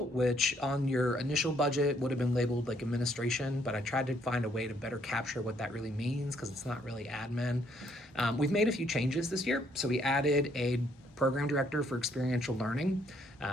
which on your initial budget would have been labeled like administration, but I tried to find a way to better capture what that really means because it's not really admin. We've made a few changes this year. So we added a Program Director for Experiential Learning,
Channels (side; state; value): both; normal; correlation 0.68